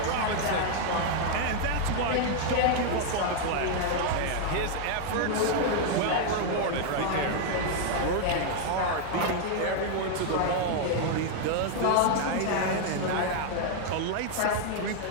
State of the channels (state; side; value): different; both; correlation 0.00